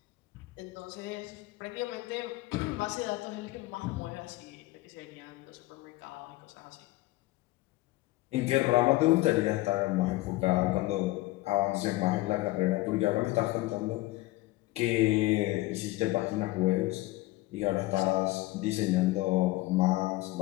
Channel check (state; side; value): quieter; right; 19.0 dB